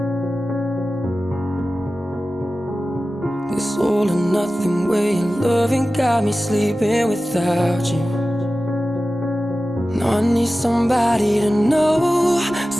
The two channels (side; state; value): both; normal; correlation 0.95